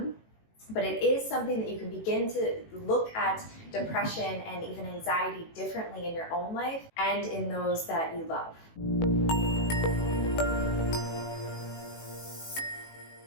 but it is something that you can begin to look at depression and even anxiety differently in your own life and in those that you love.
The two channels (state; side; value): late; right; 18 ms